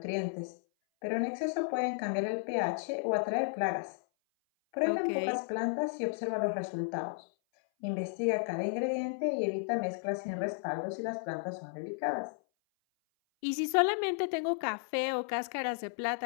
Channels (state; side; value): silent; right; 55 dB below the other